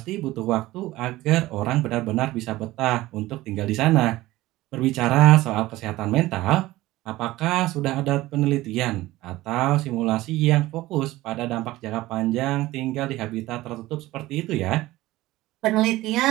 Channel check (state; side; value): quieter; left; 17.6 dB